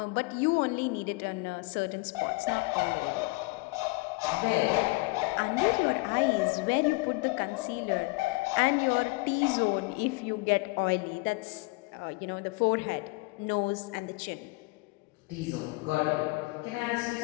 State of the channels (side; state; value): right; quieter; 24.9 dB